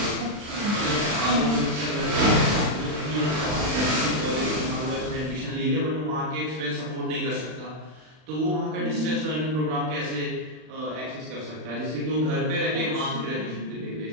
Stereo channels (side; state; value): left; late; 39 ms